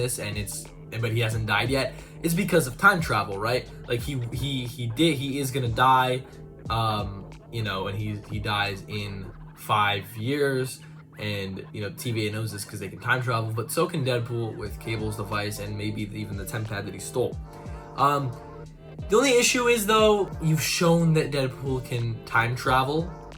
but he hasn't died yet, is because of time travel, right? Like he is gonna die, you know, and he dies in 5 years, and you know TVA knows this because they can time travel, but so can Deadpool with Cable's device and maybe even the temp pad that he stole. The only issue is, though, you've shown that Deadpool can time travel,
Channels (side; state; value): both; identical; correlation 1.00